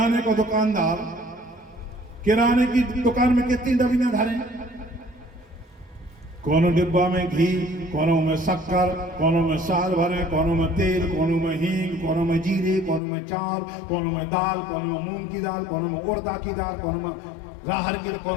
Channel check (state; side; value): drops out; right; at 13.0 s